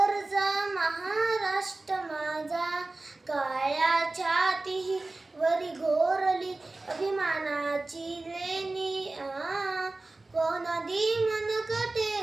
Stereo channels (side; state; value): left; quieter; 3.2 dB